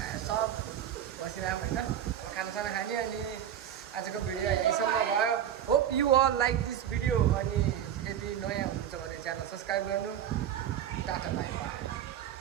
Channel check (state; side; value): quieter; left; 10.0 dB